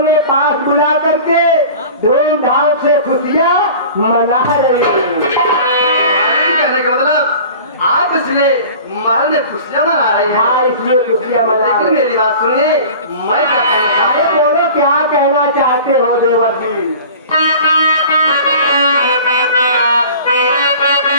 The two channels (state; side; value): inverted; both; correlation -0.41